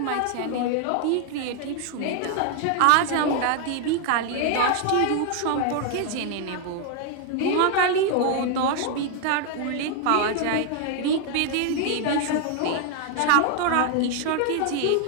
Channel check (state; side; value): different; both; correlation 0.00